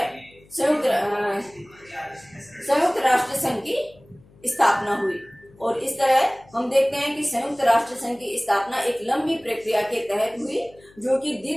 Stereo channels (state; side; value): noise; left; hum, 27 dB below the sound